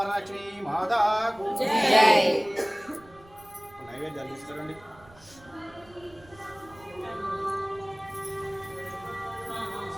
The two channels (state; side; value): noise; right; rumble, 25 dB below the sound